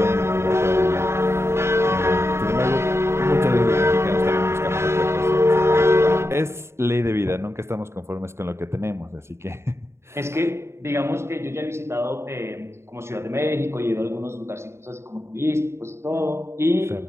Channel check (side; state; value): left; late; 0.13 ms